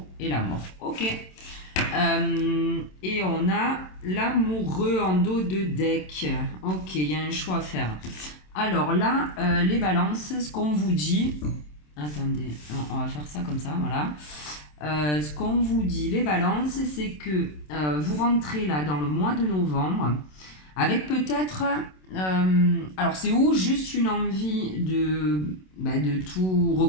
et la mort. Ok. Et on a l'amoureux en dos de deck. Ok, il y a un choix à faire. Alors là, les balances, ce qu'on vous dit... Attendez, on va faire ça comme ça, voilà. Ce qu'on vous dit, les balances, c'est que vous rentrez là dans le mois de novembre avec peut-être... alors c'est ou juste une envie de tout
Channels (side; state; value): right; late; 27 ms